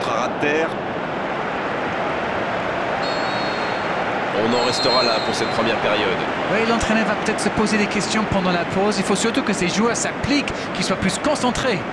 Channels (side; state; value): both; identical; correlation 1.00